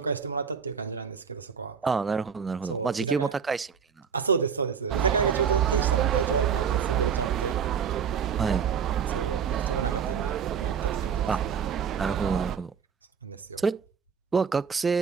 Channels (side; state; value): left; quieter; 6.8 dB